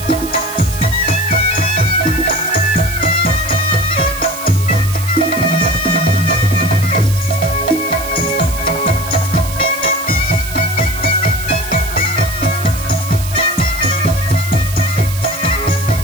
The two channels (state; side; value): noise; right; hiss, 10 dB below the sound